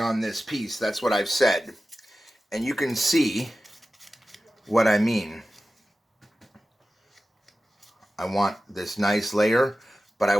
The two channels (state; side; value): normal; both; correlation 0.94